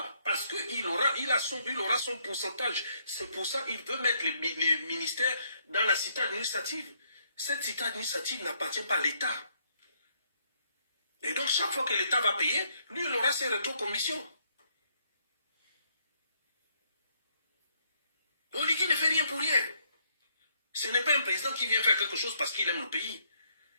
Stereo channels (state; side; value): inverted; both; correlation -0.70